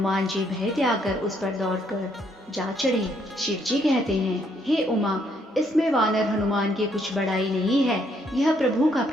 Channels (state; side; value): normal; both; correlation 0.71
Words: जी भय त्याग कर उस पर दौड़कर जा चढ़े। शिव जी कहते हैं, हे उमा, इसमें वानर हनुमान की कुछ बड़ाई नहीं है। यह प्रभु का